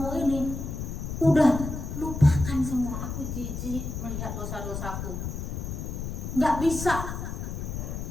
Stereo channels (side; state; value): left; noise; rumble, 5 dB below the sound